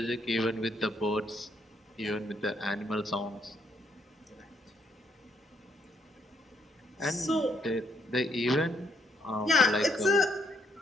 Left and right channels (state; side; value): normal; both; correlation 0.71